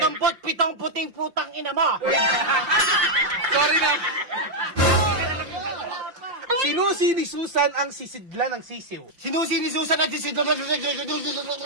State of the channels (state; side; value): late; left; 5.6 ms